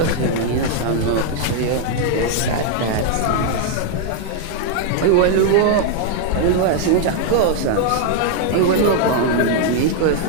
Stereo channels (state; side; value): different; both; correlation 0.00